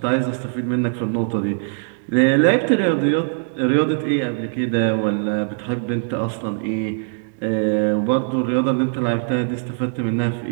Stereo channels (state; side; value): silent; left; digital silence